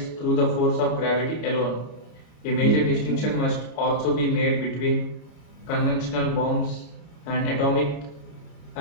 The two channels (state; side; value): late; right; 33 ms